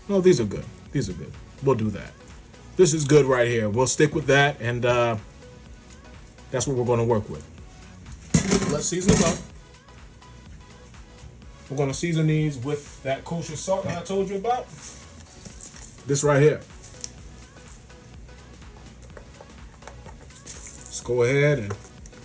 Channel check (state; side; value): identical; both; correlation 1.00